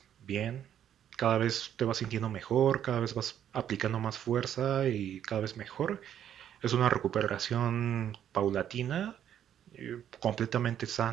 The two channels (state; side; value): quieter; left; 10.0 dB